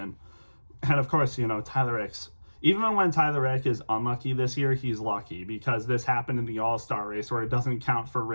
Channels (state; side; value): inverted; both; correlation -1.00